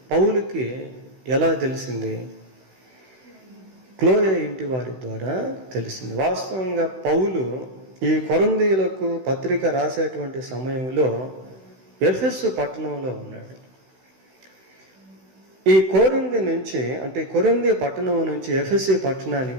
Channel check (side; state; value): left; late; 16 ms